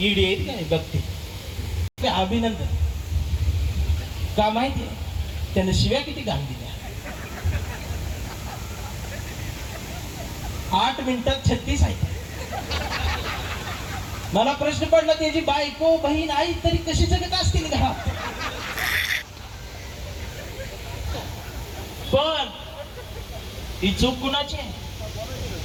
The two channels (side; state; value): both; identical; correlation 1.00